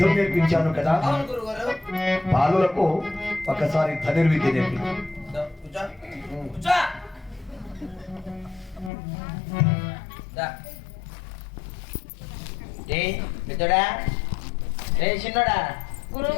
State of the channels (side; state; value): right; drops out; at 8.9 s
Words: నేర్పించాను కదా. బాలులకు ఒకసారి ధనుర్విద్య నేర్పించాను. చిన్నోడా